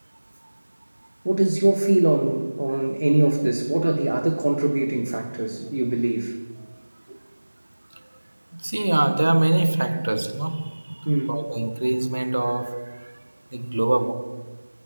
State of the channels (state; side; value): inverted; both; correlation -1.00